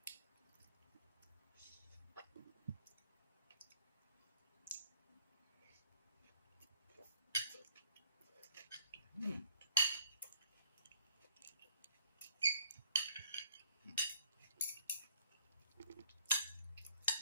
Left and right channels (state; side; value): inverted; both; correlation -0.59